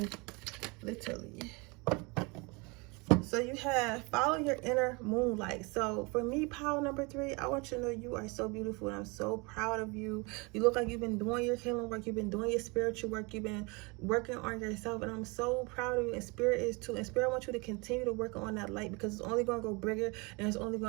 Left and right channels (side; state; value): left; quieter; 28.3 dB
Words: literally. So you have follow your inner moonlight. So for me, pile number 3, I want you to know you are so beautiful and I'm so proud of you. You look like you've been doing your healing work. You've been doing your spiritual work. You've been working on yourself and I'm so proud of you, and Spirit is too. And Spirit wants you to continue to work on that light because it's only going to go bigger and it's only